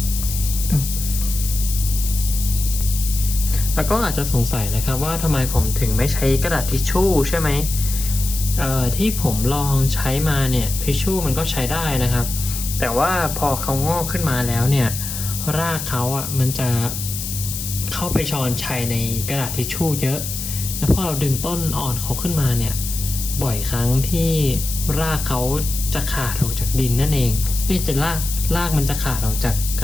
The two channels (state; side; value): noise; left; hiss, 6 dB below the sound